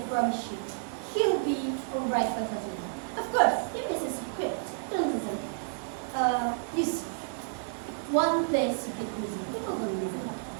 promise you, he'll be alright by Saturday. Of course, if this is equipped, don't listen. You see, one place you get busy, people don't listen.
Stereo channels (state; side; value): silent; left; 57 dB below the other